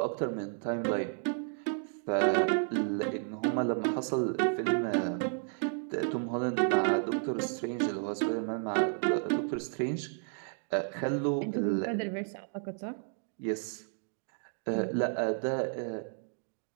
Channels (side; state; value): left; silent; 56 dB below the other